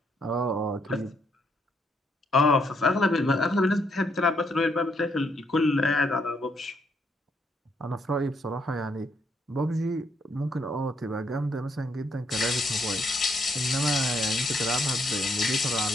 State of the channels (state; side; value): normal; both; correlation 0.74